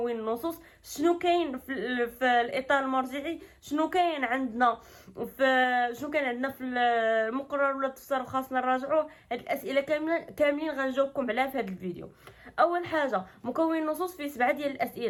النصوص، شنو كاين في الاطار المرجعي، شنو كاين عندنا في المقرر ولا التفسير خاصنا نراجعوه. هاد الاسئله كاملين غنجاوبكم عليها في هذا الفيديو. اول حاجه مكون النصوص فيه 7 ديال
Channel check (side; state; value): both; identical; correlation 1.00